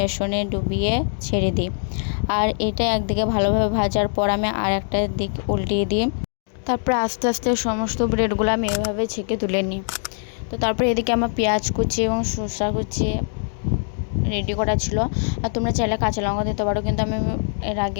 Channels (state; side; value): silent; right; digital silence